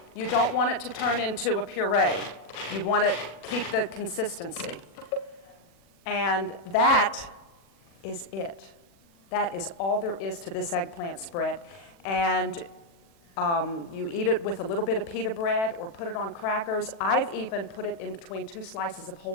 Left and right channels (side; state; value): right; late; 39 ms